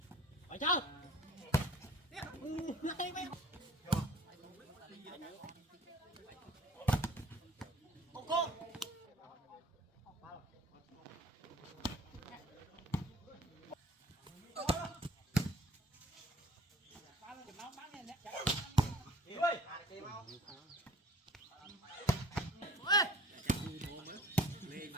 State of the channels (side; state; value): both; normal; correlation 0.51